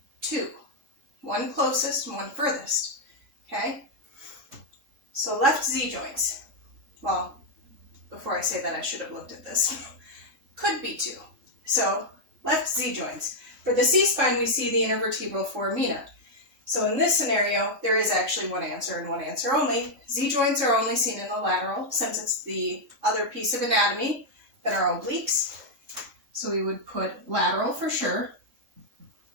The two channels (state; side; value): late; left; 3.5 ms